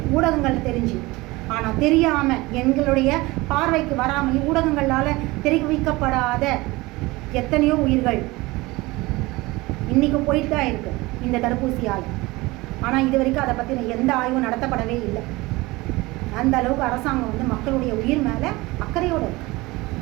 ஊடகங்களில் தெரிஞ்சு, ஆனால் தெரியாமல் எங்களுடைய பார்வைக்கு வராமல் ஊடகங்களால் தெரிவிக்கப்படாத எத்தனையோ உயிர்கள் இன்றைக்கி போயிட்டு தான் இருக்குது இந்த தடுப்பூசியால். ஆனால் இது வரைக்கும் அதை பற்றின எந்த ஆய்வும் நடத்தப்படவே இல்லை. அந்த அளவுக்கு அரசாங்கம் மக்களுடைய உயிர் மேலே அக்கறையோடு இருக்குது.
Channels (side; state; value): left; quieter; 21.5 dB